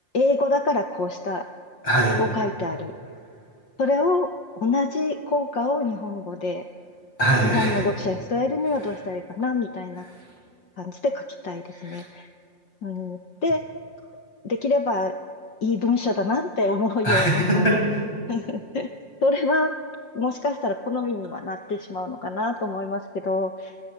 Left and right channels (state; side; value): late; right; 5.7 ms